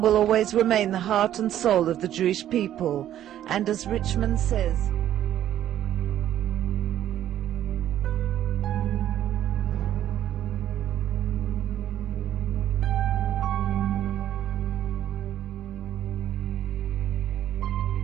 will always remain the heart and soul of the Jewish people. And as Richmond says,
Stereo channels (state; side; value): quieter; left; 11.6 dB